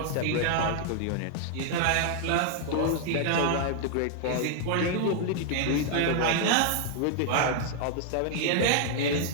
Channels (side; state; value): both; different; correlation 0.00